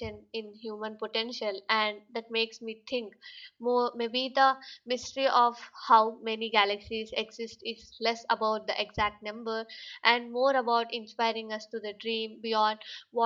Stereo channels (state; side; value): identical; both; correlation 1.00